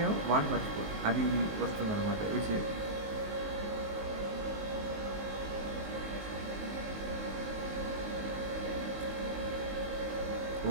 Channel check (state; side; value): late; left; 19 ms